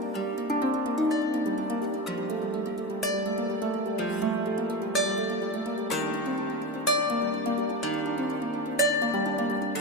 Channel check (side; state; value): both; normal; correlation 0.23